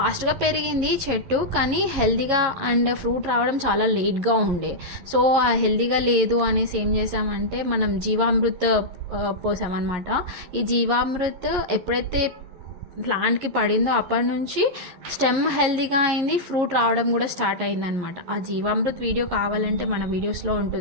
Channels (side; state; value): left; late; 11 ms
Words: పెరిగింది చెట్టు, కానీ హెల్తీగా అండ్ ఫ్రూట్ రావడం చాలా లేట్గా ఉండే. సో ఆ హెల్తీగా లేదు అనేసి ఏం చేసామంటే మనం జీవామృత్ పోసామన్నమాట. ఈ జీవామృత్ ఎప్పుడైతే ప్లాంట్కి పడిందో అప్పటి నుంచి స్టెమ్ హెల్తీగా అయింది, ఫ్రూట్ రావడం కూడా స్టార్ట్ అయిందనమాట. ఆ జీవామృత్ వీడియో కావాలంటే మన వీడియోస్లో